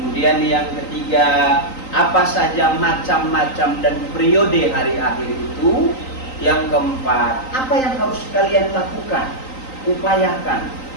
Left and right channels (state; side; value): late; right; 3.9 ms